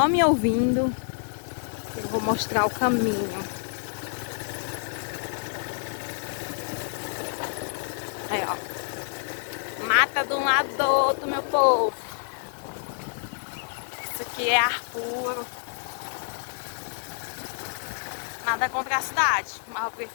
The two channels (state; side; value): silent; right; 60 dB below the other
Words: me ouvindo. Eu vou mostrar o caminho. Aí, ó. Mata de um lado do outro, meu povo. Isso aqui é ar puro. Nada contra a cidade, mas eu